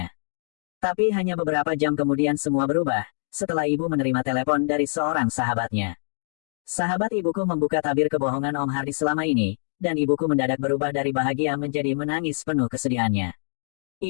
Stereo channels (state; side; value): silent; right; digital silence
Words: Tapi hanya beberapa jam kemudian semua berubah, setelah ibu menerima telepon dari seorang sahabatnya. Sahabat ibuku membuka tabir kebohongan Om Hardi selama ini, dan ibuku mendadak berubah dari bahagia menjadi menangis penuh kesedihannya.